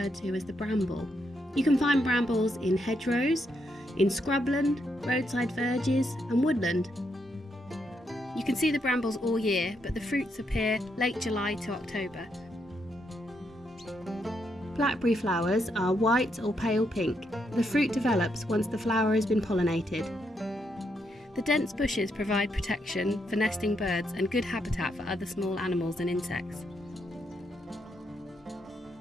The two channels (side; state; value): both; normal; correlation 0.79